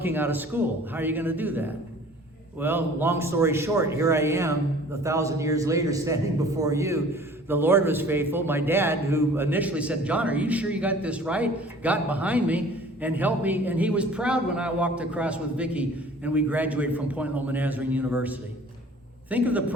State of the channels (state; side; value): normal; both; correlation 0.49